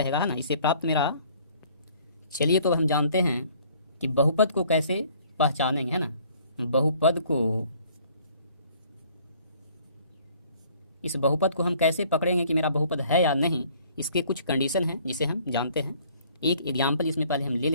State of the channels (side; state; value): both; inverted; correlation -0.58